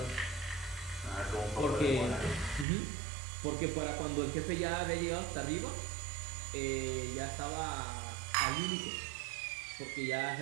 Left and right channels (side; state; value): left; drops out; at 2.7 s